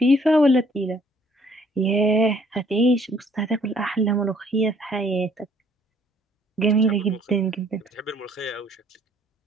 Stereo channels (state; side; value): normal; both; correlation 0.62